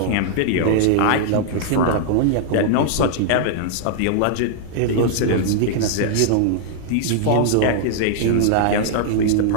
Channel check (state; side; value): different; both; correlation -0.01